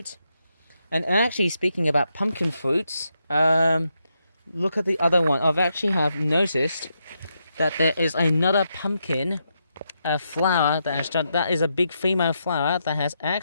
And actually, speaking about pumpkin fruits, look at the other one. I've actually have noticed that there is another pumpkin flower that is a big female flower that has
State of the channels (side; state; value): both; inverted; correlation -0.82